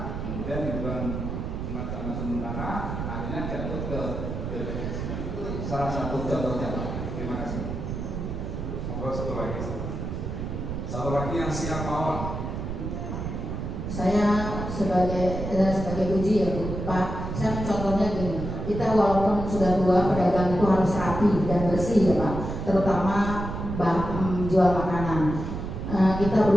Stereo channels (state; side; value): noise; right; rumble, 5 dB below the sound